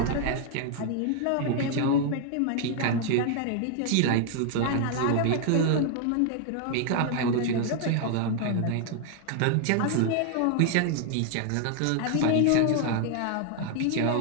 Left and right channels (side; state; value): both; different; correlation 0.00